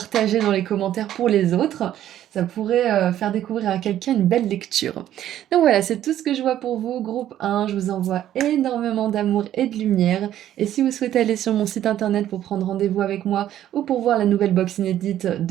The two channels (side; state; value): left; quieter; 11.9 dB